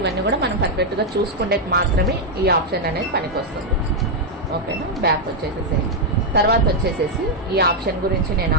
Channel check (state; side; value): normal; both; correlation 0.00